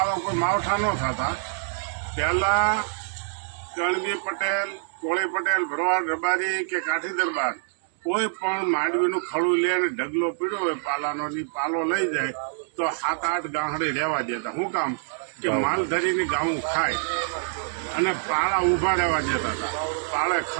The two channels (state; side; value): silent; left; digital silence